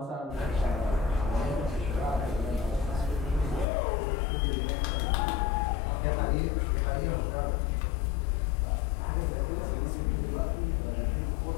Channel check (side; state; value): right; drops out; at 3.7 s